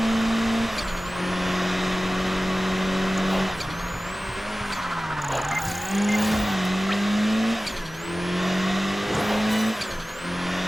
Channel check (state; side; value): normal; both; correlation 0.97